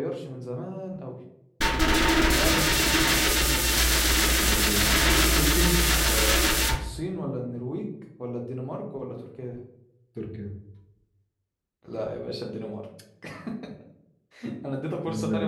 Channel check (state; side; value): identical; both; correlation 1.00